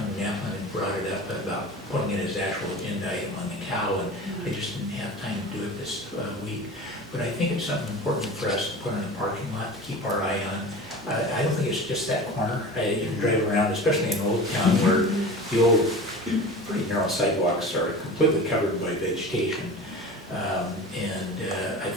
Yapman had brought it up about putting it as actual agenda item on the cow, and I just didn't have time to do it this week. But I think it's something important for us to put in the parking lot to keep our eye on. I don't think it's just that corner. You can drive around, especially in Old Town, where the old, pretty narrow sidewalks are completely covered by vegetation. I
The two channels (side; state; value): both; normal; correlation 0.35